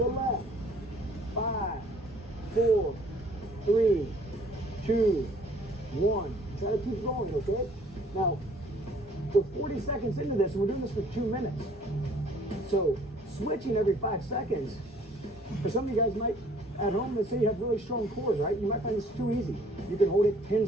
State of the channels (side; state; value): both; normal; correlation 0.57